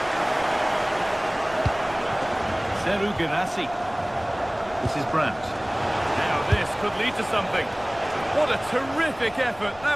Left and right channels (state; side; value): noise; left; rumble, 21 dB below the sound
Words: Seru Girassi. This is Brandt. Now this could lead to something. What a terrific effort.